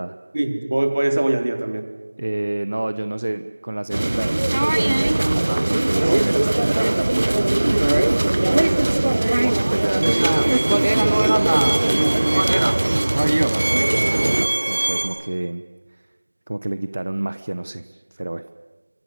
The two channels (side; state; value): both; inverted; correlation -1.00